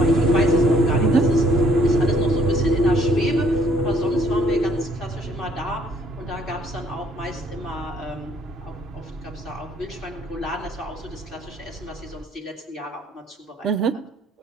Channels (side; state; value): both; normal; correlation 0.63